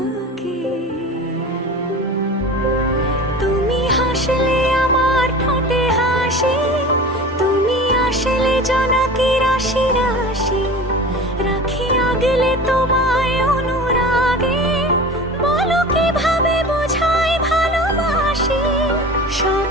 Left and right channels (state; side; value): normal; both; correlation 0.35